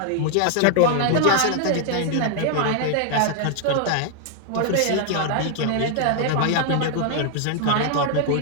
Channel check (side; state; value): both; different; correlation 0.00